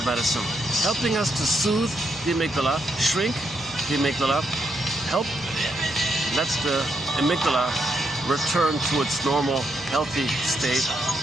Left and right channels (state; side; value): normal; both; correlation 0.79